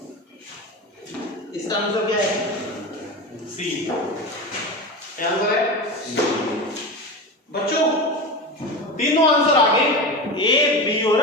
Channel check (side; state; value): both; normal; correlation 0.24